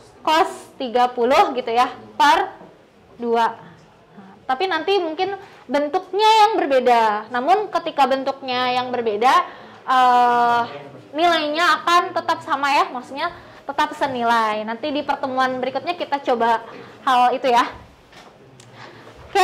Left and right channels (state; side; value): identical; both; correlation 1.00